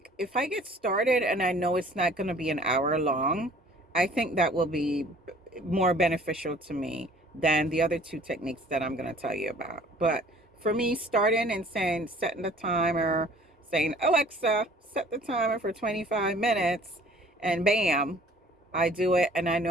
if I get started and I know it's not going to be an hour long, I think that will be more beneficial to me than the other two techniques that I'm going to tell you about. But for me, starting and setting the timer, saying, Alexa, set the timer for 25 minutes, and bam, I do it, and I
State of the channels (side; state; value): both; normal; correlation 0.52